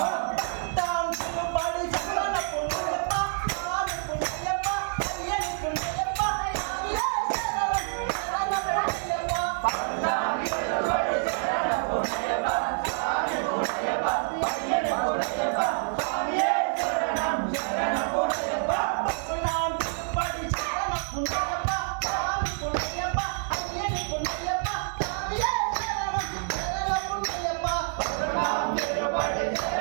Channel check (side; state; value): left; silent; 60 dB below the other